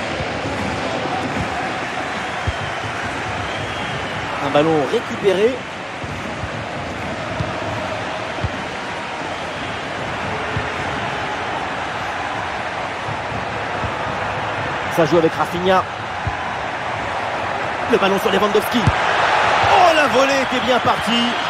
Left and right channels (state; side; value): identical; both; correlation 1.00